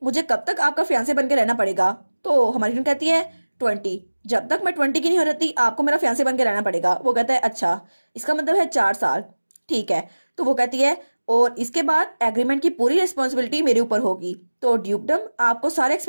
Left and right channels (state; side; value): inverted; both; correlation -1.00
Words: मुझे कब तक आपका फियांसे बन के रहना पड़ेगा। तो हमारी फ्रेंड कहती है 20, जब तक मैं 20 की नहीं हो रहती आपको मेरा फियांसे बन के रहना पड़ेगा। वो कहता है अच्छा, इसका मतलब है 4 साल, ठीक है। तो वो कहती है और इसके बाद एग्रीमेंट की पूरी रिस्पॉन्सिबिलिटी मेरे ऊपर होगी, तो ड्यूकडम आपको सारे